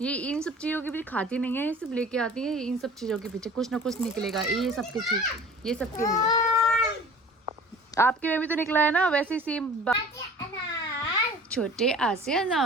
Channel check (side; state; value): both; normal; correlation 0.45